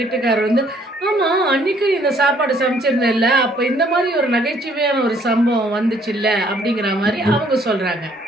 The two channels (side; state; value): both; normal; correlation 0.63